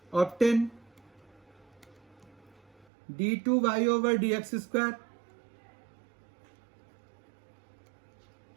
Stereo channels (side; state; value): left; drops out; at 2.9 s